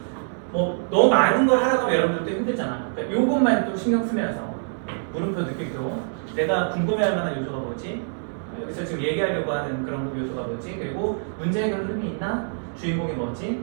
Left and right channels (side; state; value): left; silent; 62 dB below the other